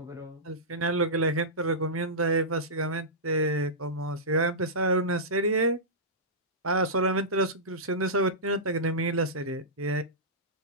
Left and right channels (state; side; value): normal; both; correlation -0.16